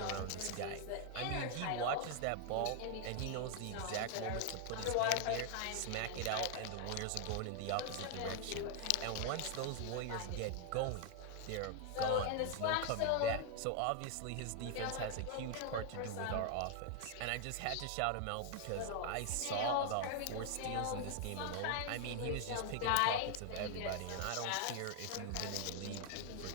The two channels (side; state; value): both; different; correlation 0.00